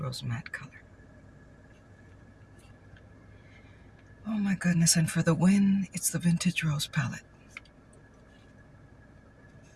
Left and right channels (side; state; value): both; identical; correlation 1.00